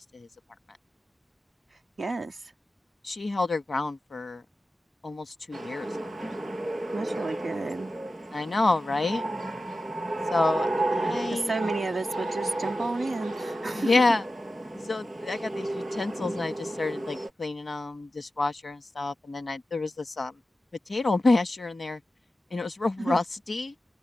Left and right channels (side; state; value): both; normal; correlation 0.93